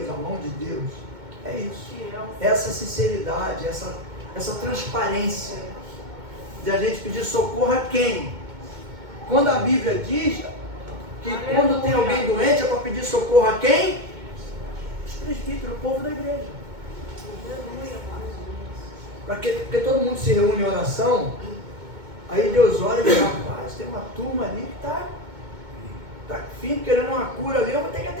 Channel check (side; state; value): left; late; 2.2 ms